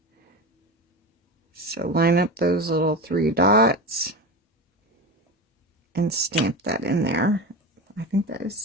So line up those little 3 dots and stamp that in there. I think that is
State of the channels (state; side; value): normal; both; correlation 0.24